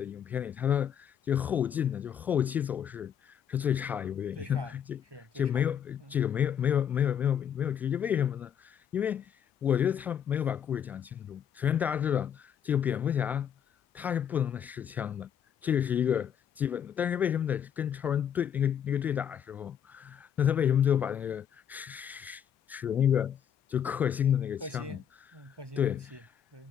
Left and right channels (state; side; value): quieter; right; 8.8 dB